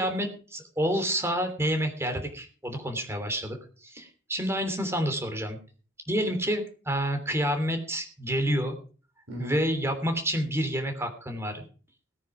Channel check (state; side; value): normal; both; correlation 0.55